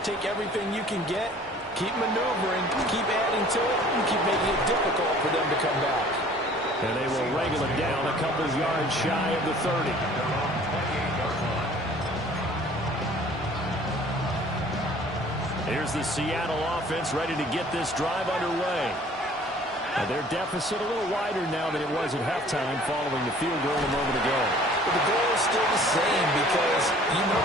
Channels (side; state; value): both; normal; correlation 0.52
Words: take everything you can get, keep maneuvering, keep adding to it, and keep making it difficult for them to come back. And they will wrangle it down a couple of yards shy of the 30. Here's the Seattle offense ready to get this drive underway. And their deficit a little wider now than it was at halftime following the field goal a moment ago. But the goal is still the same because you know